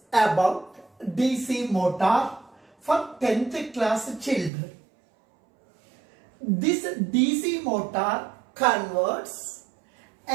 about DC motor for 10th class children. This DC motor converts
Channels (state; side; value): drops out; left; at 4.5 s